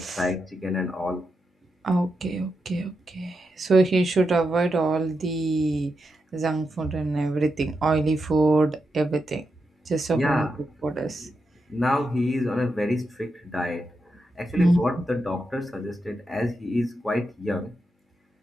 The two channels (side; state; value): both; normal; correlation 0.86